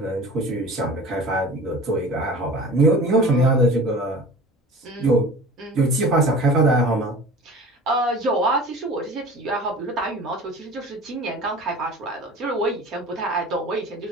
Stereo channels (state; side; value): normal; both; correlation 0.39